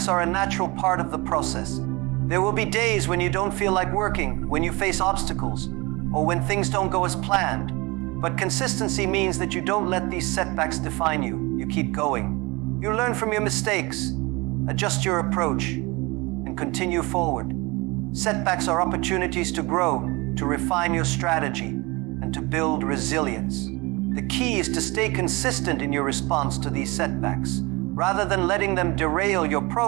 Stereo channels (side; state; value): left; quieter; 24.6 dB